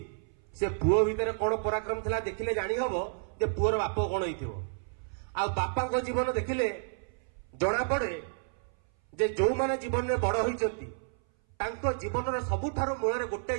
से पुओ भितर कौन पराक्रम था देखिले जानी हब जे पुओर बाप कौन हो बापा जीवन देखिले जना पड़े जे जो माने जीवन में बड़ होती जीवन सबुठार मूल गोटे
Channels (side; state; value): left; silent; 57 dB below the other